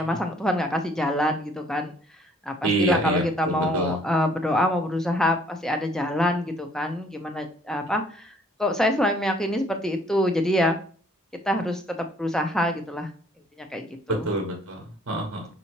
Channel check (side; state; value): both; normal; correlation 0.60